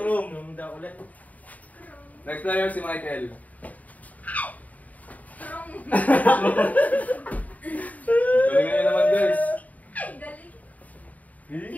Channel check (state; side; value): late; right; 0.073 ms